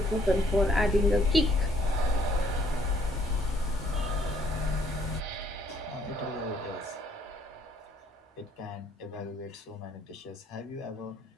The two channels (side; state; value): both; normal; correlation 0.65